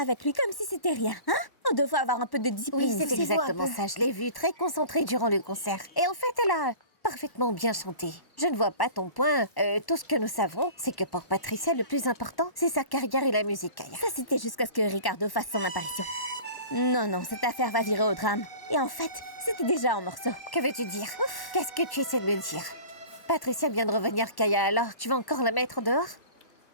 avec lui comme si c'était rien, hein? On devrait avoir un peu de discipline. Oui, c'est exactement ça. Je l'ai vue très concentrée durant le concert. Et en fait, elle a parfaitement bien chanté. Je ne vois pas ton point. Tout ce que nous savons, c'est que pour Patricia, le plus important, c'est sa carrière et la musique. Ça, c'était jusqu'à ce que Ricardo fasse son apparition. Non, non, cette affaire va virer au drame. Et en fait, c'était déjà en morceaux. Que veux-tu dire? Qu'est-ce que tu essaies de me dire? Patricia vient de revenir, Kaya, alors tu vas encore la mettre dehors?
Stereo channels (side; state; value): right; late; 1.1 ms